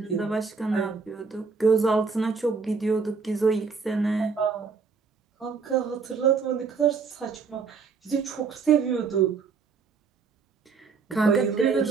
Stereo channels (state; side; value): quieter; left; 5.1 dB